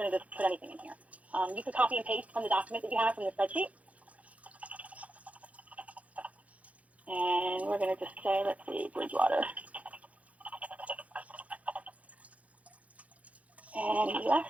to just put anything in here. You can copy and paste from the document that you have from the spreadsheet. And we're going to just say, let's see, Bridgewater. And US.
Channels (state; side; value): late; left; 0.068 ms